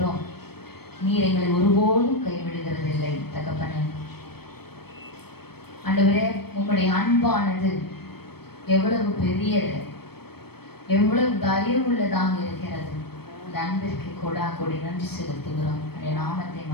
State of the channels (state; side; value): late; right; 0.96 ms